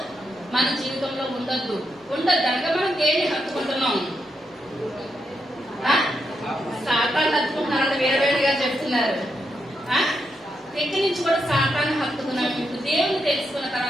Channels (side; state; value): both; normal; correlation 0.83